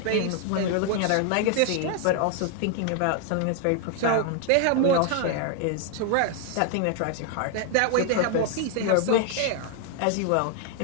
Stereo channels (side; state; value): both; different; correlation 0.00